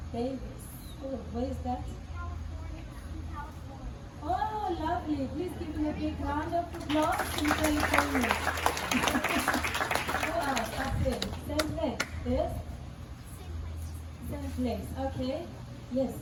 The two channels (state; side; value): identical; both; correlation 1.00